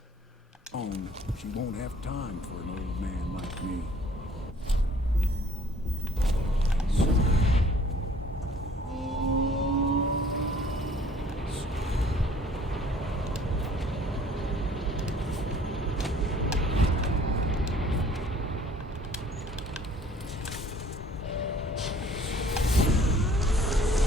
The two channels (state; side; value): normal; both; correlation 0.56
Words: She won't have time for an old man like me.